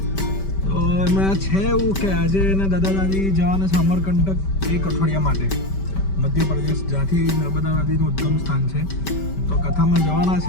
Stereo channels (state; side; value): late; right; 5.2 ms